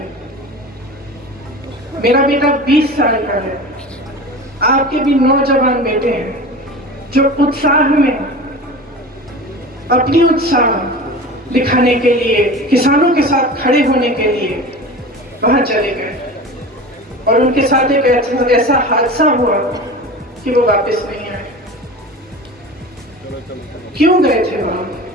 मेरा बेटा 20 साल का है। आपके भी नौजवान बेटे हैं जो उत्साह में अपनी उत्साह दिखाने के लिए, किसानों के साथ खड़े होने के लिए वहां चले गए और उनके साथ एक ऐसा हादसा हुआ कि वो वापस नहीं आए। क्यों गए थे वहां?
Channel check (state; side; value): normal; both; correlation 0.33